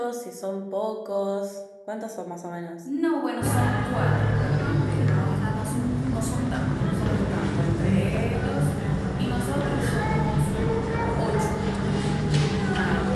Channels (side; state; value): both; identical; correlation 1.00